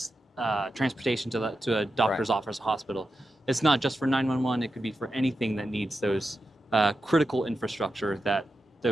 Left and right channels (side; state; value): both; normal; correlation 0.90